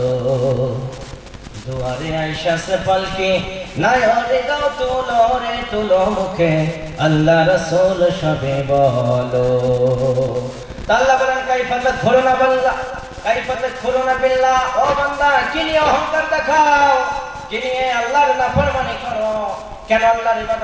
দুয়ারে আইসা সে পালকি নাই রে গাও তুলো রে তুলো মুখে আল্লাহ রাসূল সবে বলো। আল্লাহ বলেন কাইফা তাদখুলুনা বান্দা, কাইফা তাদখুলুনা বিল্লাহ, ও বান্দা কি নিয়ে অহংকার দেখাও, কি নিয়ে আল্লাহর নাফরমানি করো, কেন আল্লাহর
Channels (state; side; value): identical; both; correlation 1.00